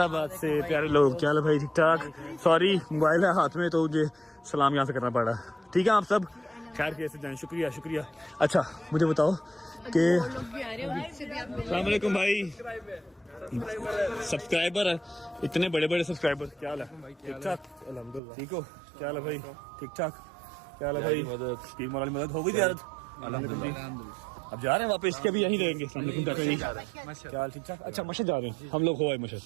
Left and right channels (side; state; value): left; drops out; at 18.2 s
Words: से। प्यारे लोग, क्या हाल है भाई, ठीक ठाक? सॉरी मोबाइल है हाथ में, तो मुझे सलाम यहाँ से करना पड़ा। ठीक है, आप सब खैर कैसे जाएं? शुक्रिया। अच्छा मुझे बताओ कि अस्सलाम वालेकुम भाई, सब्सक्राइबर है, इतने बड़े सब्सक्राइबर, क्या हाल है? ठीक ठाक अल्हम्दुलिल्लाह। ठीक हो? क्या हाल है भाई? ठीक ठाक। क्या हाल है भाई? मदद हो गई ज़ियारत? अल्हम्दुलिल्लाह। अब जा रहे हैं वापस के, भी यहीं रहेंगे? क्या हाल, ठीक ठाक? अच्छा मशहद जा रहे हैं हम लोग, हो मशहद